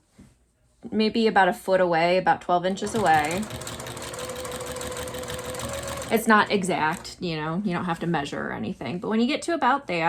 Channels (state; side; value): identical; both; correlation 1.00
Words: maybe about 1 foot away, about 12 inches away, it's not exact, you know, you don't have to measure or anything, but when you get to about